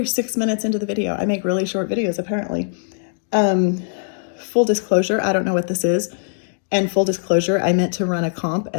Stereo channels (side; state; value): right; silent; digital silence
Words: 6 minutes into the video. I make really short videos apparently. Full disclosure, I don't know what this is. And full disclosure, I meant to run a comp